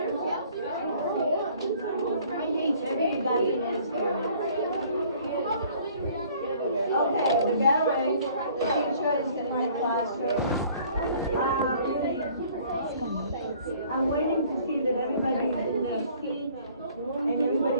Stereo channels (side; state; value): both; inverted; correlation -0.55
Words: Okay, the gathering, the teacher is in my classroom. I'm waiting to see that everybody's in their seat and